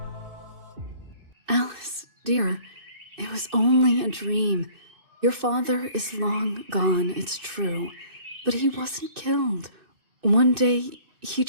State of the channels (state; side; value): late; left; 2.6 ms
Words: Alice, dear, it was only a dream. Your father is long gone, it's true, but he wasn't killed. One day, he